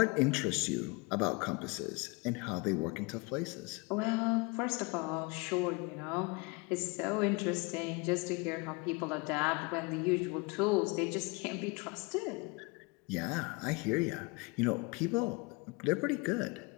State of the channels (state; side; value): quieter; right; 27.4 dB